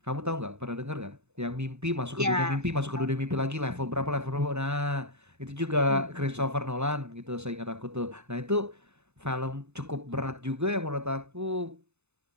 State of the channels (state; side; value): late; left; 0.81 ms